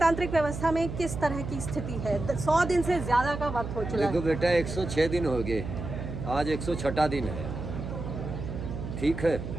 व्यवस्था में किस तरह की स्थिति है। 100 दिन से ज़्यादा का वक्त हो चुका है। देखो बेटा, 106 दिन हो गए, आज 106वां दिन है, ठीक है।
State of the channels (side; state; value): right; noise; hum, 7 dB below the sound